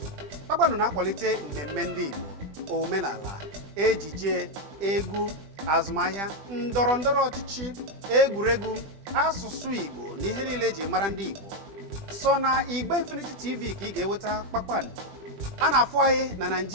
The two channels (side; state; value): left; late; 20 ms